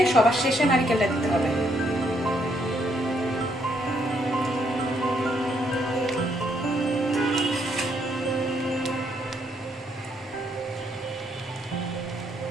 সবার শেষে নারিকেলটা দিতে হবে।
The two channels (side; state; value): both; normal; correlation 0.73